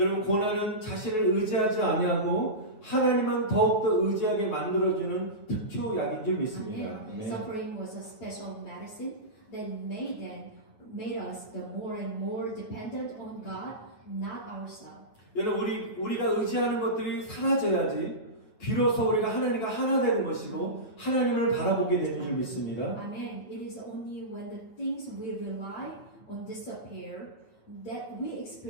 고난은 자신을 의지하지 아니하고 하나님만 더욱더 의지하게 만들어주는 특효약인 줄 믿습니다. Amen. Suffering was a special medicine that made us the more and more dependent on God, not ourselves. 여러분 우리가 의지하는 것들이 사라져야지 비로소 우리가 하나님과 하나 되는 것이고 하나님을 바라보게 되는 줄 믿습니다. Amen. It is only when the things we rely on disappear that we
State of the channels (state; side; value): late; right; 9.3 ms